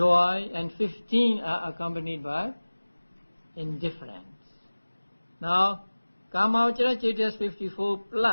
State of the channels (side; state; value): both; inverted; correlation -1.00